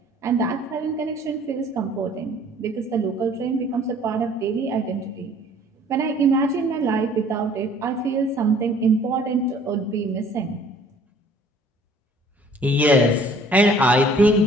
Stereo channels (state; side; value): normal; both; correlation 0.55